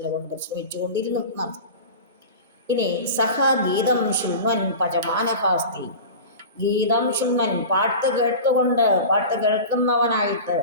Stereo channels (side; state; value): both; inverted; correlation -0.32